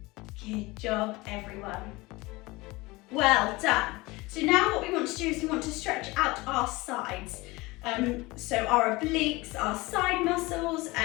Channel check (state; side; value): quieter; right; 22.1 dB